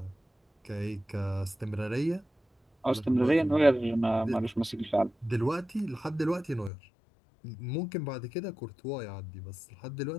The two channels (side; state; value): right; drops out; at 6.7 s